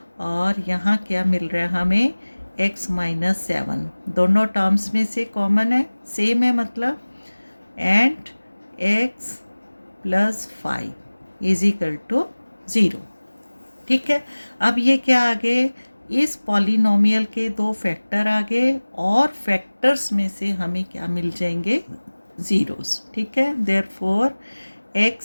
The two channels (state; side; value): inverted; both; correlation -1.00